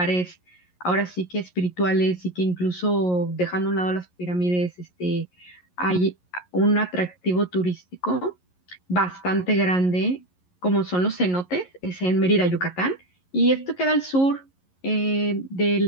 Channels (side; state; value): right; late; 11 ms